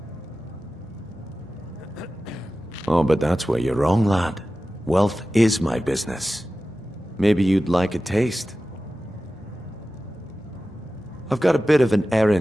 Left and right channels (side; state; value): both; normal; correlation 0.95